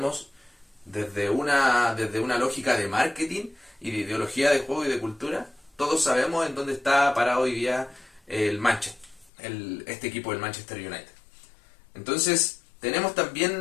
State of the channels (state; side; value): drops out; right; at 9.3 s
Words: desde una lógica de marketing y de ideología de juego y de cultura, todos sabemos en dónde está parado hoy día el Manchester, este equipo del Manchester United. Entonces, tenemos